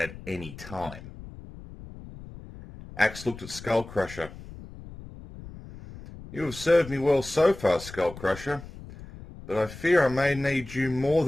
any time. Axe looked at Skull Crusher. You have served me well so far, Skull Crusher, but I fear I may need you more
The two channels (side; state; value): left; noise; rumble, 15 dB below the sound